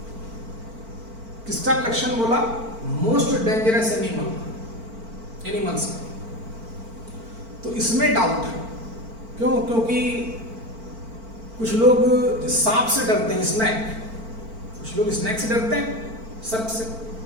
किसका कलेक्शन बोला? मोस्ट डेंजरस एनिमल्स का। तो इसमें डाउट है, क्यों? क्योंकि कुछ लोग सांप से डरते हैं, स्नैक, कुछ लोग स्नैक से डरते हैं, सर्प से,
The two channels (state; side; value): late; left; 4.4 ms